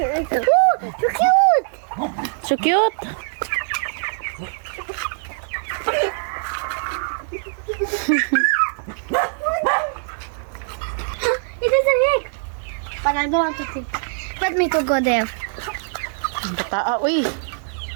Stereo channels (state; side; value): silent; left; digital silence